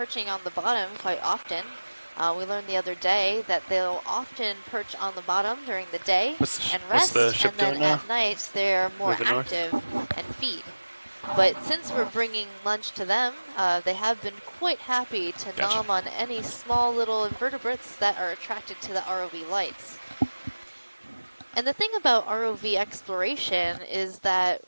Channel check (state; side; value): inverted; both; correlation -1.00